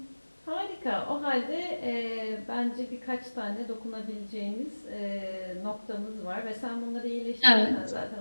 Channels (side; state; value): both; inverted; correlation -1.00